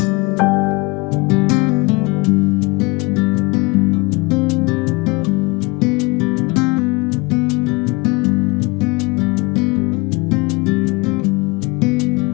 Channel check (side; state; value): right; quieter; 25.7 dB